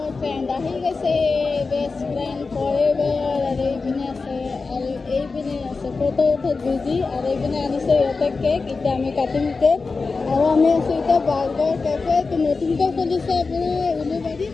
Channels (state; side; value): quieter; right; 4.2 dB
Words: ফ্ৰেণ্ড আহি গৈছে বেষ্ট ফ্ৰেণ্ড ফৰএভাৰ আৰু এইপিনে আছে আৰু এইপিনে আছে ফটো উঠাত বিজি আৰু এইপিনে আনিছে ইহঁতে কেক এতিয়া আমি কাটিম কেক আৰু আমি আছোঁ এতিয়া বাৰ্গাৰ কেফে নতুনকৈ খুলিছে আপোনাৰ উলুবাৰীত